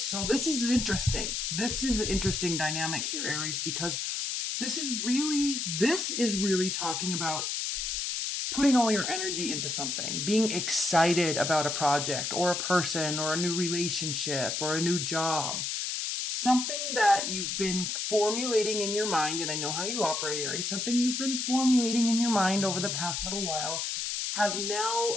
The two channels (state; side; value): noise; left; hiss, 2 dB below the sound